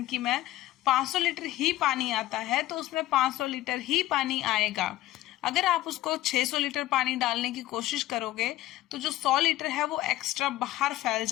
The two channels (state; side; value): quieter; right; 15.3 dB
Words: में 500 लीटर ही पानी आता है तो उसमें 500 लीटर ही पानी आएगा। अगर आप उसको 600 लीटर पानी डालने की कोशिश करोगे तो जो 100 लीटर है वो एक्स्ट्रा बाहर फैल